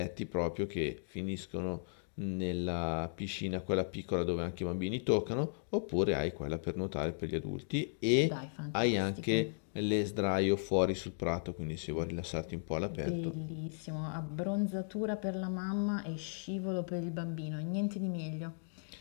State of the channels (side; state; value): right; silent; digital silence